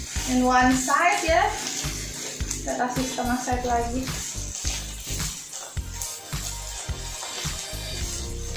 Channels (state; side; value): identical; both; correlation 1.00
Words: in one side ya. Kita kasih setengah side lagi.